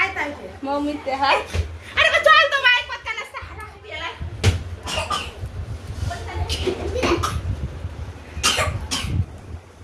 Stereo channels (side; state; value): both; identical; correlation 1.00